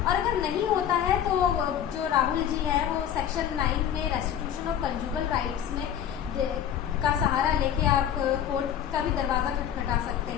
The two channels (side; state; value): right; quieter; 9.8 dB